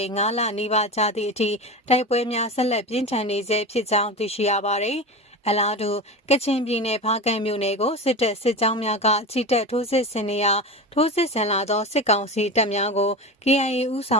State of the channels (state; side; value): normal; both; correlation 0.26